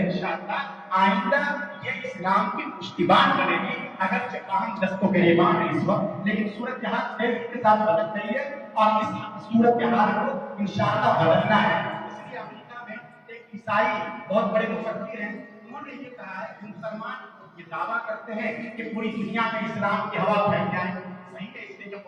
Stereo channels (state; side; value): identical; both; correlation 1.00